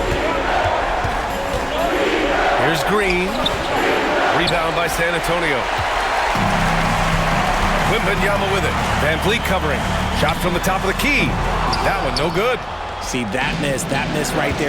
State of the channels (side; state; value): both; identical; correlation 1.00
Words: Here's Green. Rebound by San Antonio. Wembanyama with it. Van Vliet covering. Shot from the top of the key. That one no good. See, that miss right